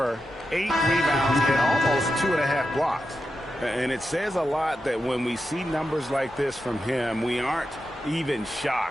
8 rebounds, and almost 2.5 blocks. And it says a lot that when we see numbers like this from him, we aren't even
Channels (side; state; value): both; normal; correlation 0.89